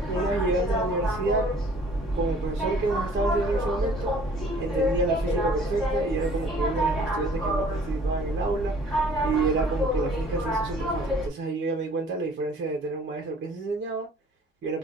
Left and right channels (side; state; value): both; normal; correlation 0.54